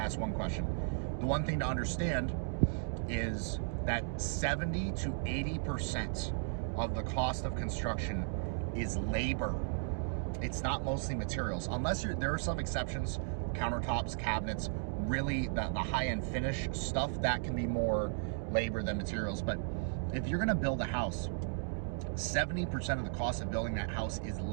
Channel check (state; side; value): silent; left; digital silence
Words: ask one question. The one thing to understand is that 70 to 80% of the cost of construction is labor. It's not mostly materials, unless there are some exceptions, countertops, cabinets, really the high-end finish stuff, that can be more labor than materials. But if you're going to build a house, 70% of the cost of building that house is